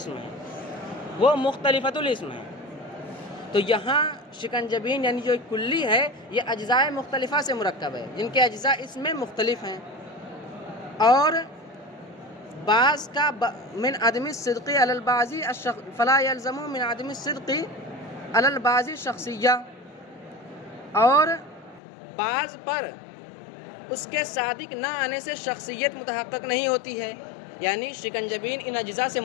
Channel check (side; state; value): right; drops out; at 21.8 s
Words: ہیں، تو یہاں شکنجبین یعنی جو کلی ہے یہ اجزاء مختلفہ سے مرکب ہے جن کے اجزاء اس میں مختلف ہیں، اور بعض کا من عدم الصدق علی البعض فلا يلزم من عدم الصدق علی البعض شخصیہ، اور بعض پر اس کے صادق نہ آنے سے شخصیت متحقق نہیں ہوتی ہے، یعنی شکنجبین ان اجزاء سے